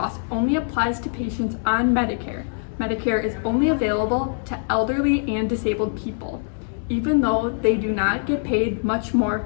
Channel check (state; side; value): silent; right; digital silence